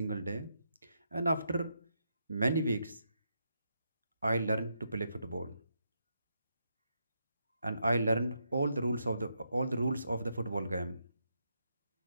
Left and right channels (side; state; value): both; inverted; correlation -0.81